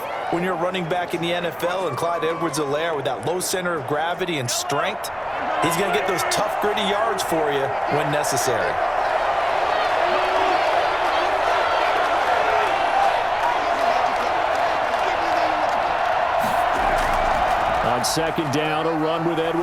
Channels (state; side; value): identical; both; correlation 1.00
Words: when you're running back in the NFL. And Clyde Edwards-Helaire, with that low center of gravity and strength, he's going to get those tough, gritty yards for you when necessary. On 2nd down, a run with